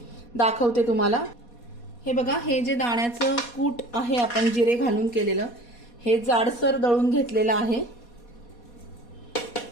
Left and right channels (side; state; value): right; late; 4.2 ms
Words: दाखवते तुम्हाला। हे बघा, हे जे दाण्याचं कूट आहे आपण जिरे घालून केलेलं, हे जाडसर दळून घेतलेलं आहे।